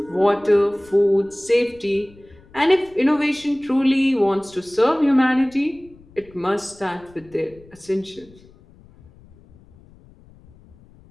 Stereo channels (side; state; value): left; noise; rumble, 26 dB below the sound